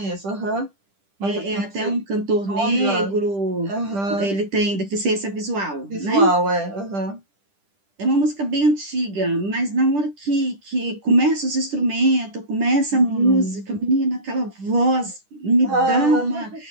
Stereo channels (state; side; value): late; left; 10 ms